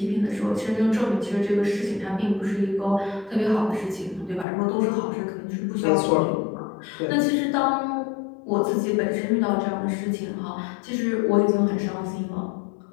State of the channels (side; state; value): right; drops out; at 4.5 s